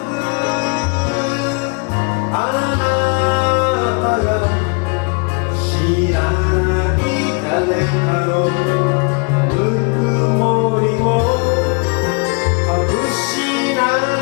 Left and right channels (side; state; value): right; quieter; 32.8 dB